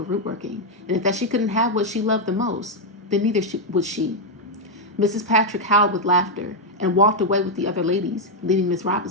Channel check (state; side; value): normal; both; correlation 0.00